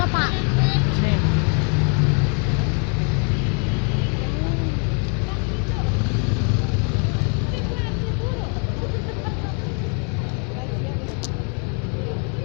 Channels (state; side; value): quieter; right; 39.3 dB